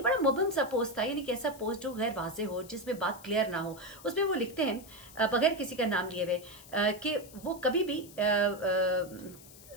बड़ा मुबहम सा पोस्ट था, यानी कि ऐसा पोस्ट जो गैर वाज़ेह हो, जिसमें बात क्लियर ना हो। उसमें वो लिखते हैं बगैर किसी का नाम लिए हुए कि वो कभी भी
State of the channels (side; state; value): left; noise; hiss, 19 dB below the sound